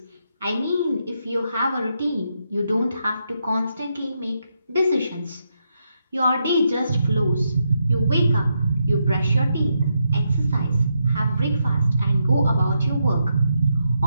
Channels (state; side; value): inverted; both; correlation -0.82